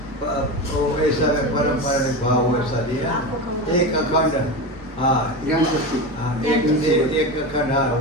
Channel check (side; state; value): both; normal; correlation 0.22